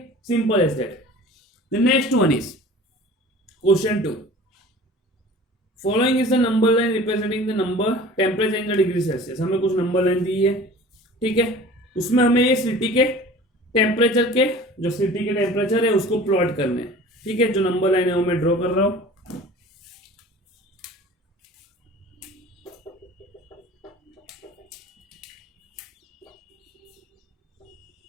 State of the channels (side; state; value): both; normal; correlation 0.43